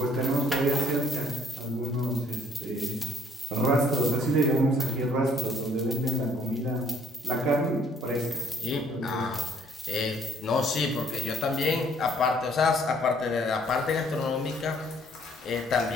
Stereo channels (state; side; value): normal; both; correlation 0.62